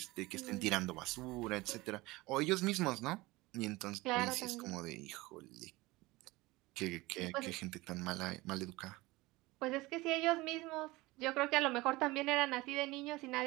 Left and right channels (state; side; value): quieter; left; 21.0 dB